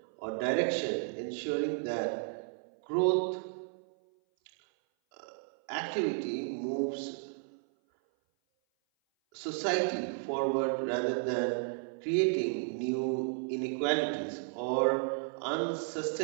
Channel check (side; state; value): left; silent; 56 dB below the other